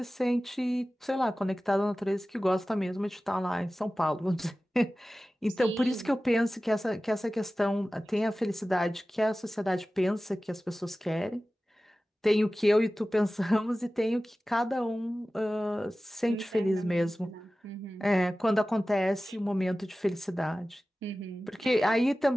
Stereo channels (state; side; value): normal; both; correlation 0.96